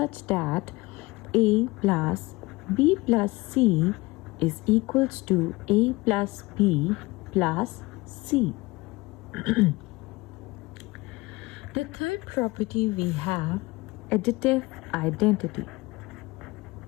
that A plus B plus C is equals to A plus B plus C. The third property we have additive identity.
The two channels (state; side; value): quieter; right; 22.0 dB